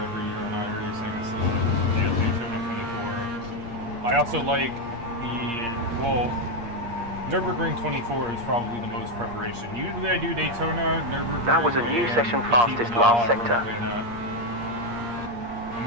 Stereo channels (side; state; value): left; late; 8.5 ms